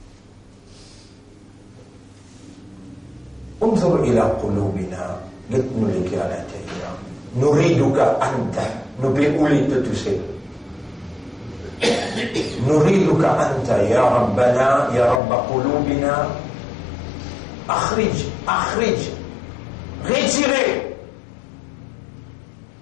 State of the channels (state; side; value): drops out; right; at 15.2 s